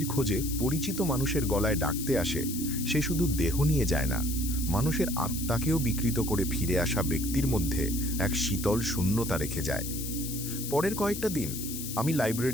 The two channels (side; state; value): left; noise; hiss, 7 dB below the sound